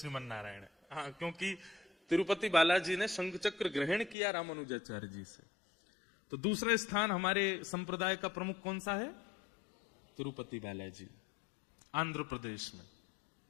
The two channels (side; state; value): right; drops out; at 4.2 s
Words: नारायण। हाँ, क्योंकि तिरुपति बालाजी ने शंख चक्र ग्रहण किया रामानुजाचार्य जी से। तो दूसरा स्थान हमारे संप्रदाय का प्रमुख कौन सा है? तिरुपति बालाजी, आंध्र प्रदेश में।